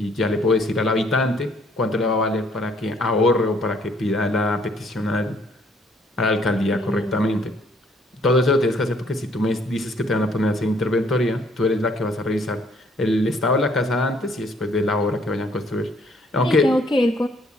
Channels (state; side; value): normal; both; correlation 0.64